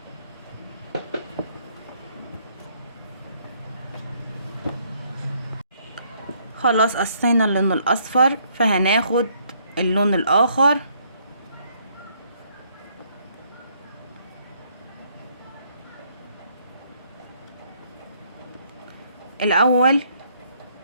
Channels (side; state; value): both; inverted; correlation -0.68